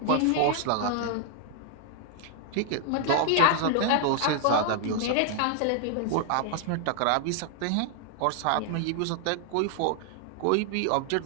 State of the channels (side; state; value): both; different; correlation 0.00